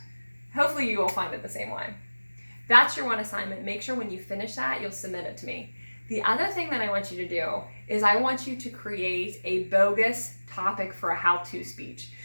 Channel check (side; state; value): both; inverted; correlation -1.00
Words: Hopefully you will find it the same way. That's your one assignment. Make sure when you finish that, you'll submit it to me. The other thing that I want you to do is I want you to create a bogus topic for a how-to speech.